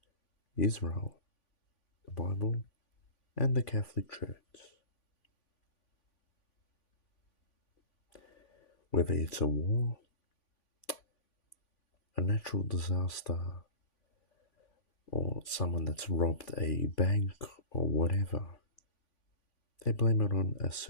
Israel, the Bible, and the Catholic Church. Whether it's a war, a natural disaster, or someone that's robbed a bank or whatever, they blame it on a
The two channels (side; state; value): right; late; 3.5 ms